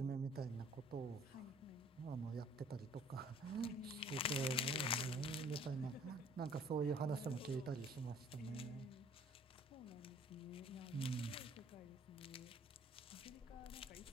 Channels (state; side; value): normal; both; correlation 0.56